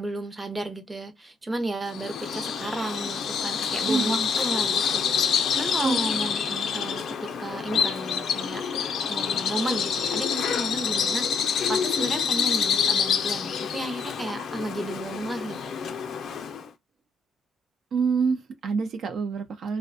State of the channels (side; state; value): right; quieter; 3.2 dB